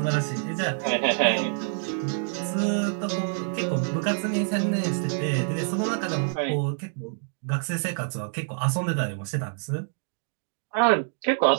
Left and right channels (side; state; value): left; silent; digital silence